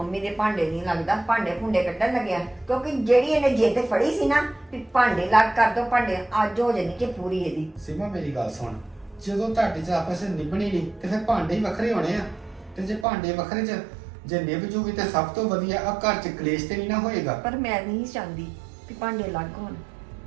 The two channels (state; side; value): drops out; left; at 13.1 s